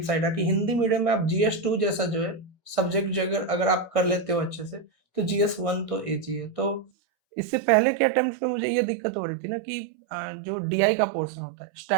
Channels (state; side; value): drops out; left; at 6.9 s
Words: साइड है कि हिंदी मीडियम में आप जीएस 2 जैसा जो है सब्जेक्ट जो अगर अगर आप कर लेते हो अच्छे से, तो जीएस 1 तो ईज़ी है। तो इससे पहले के अटेम्प्ट्स में मुझे ये दिक्कत हो रही थी ना कि जो डीआई का पोर्शन होता है,